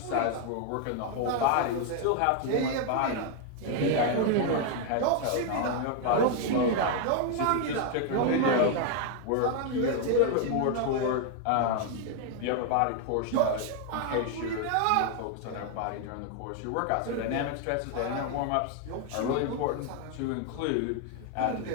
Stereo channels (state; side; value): different; both; correlation 0.01